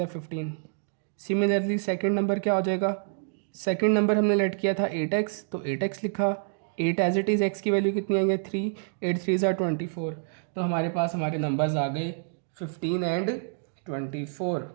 15। सिमिलरली सेकंड नंबर क्या हो जाएगा, सेकंड नंबर हमने लेट किया था 8x, तो 8x लिखा, 8 एज इट इज़, x की वैल्यू कितनी आई है 3, 8 3 ज़ा 24। तो हमारे पास हमारे नंबर्स आ गए 15 एंड 24।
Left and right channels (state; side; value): silent; left; digital silence